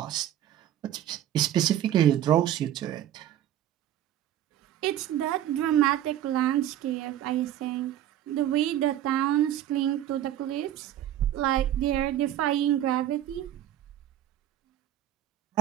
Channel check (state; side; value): quieter; left; 11.9 dB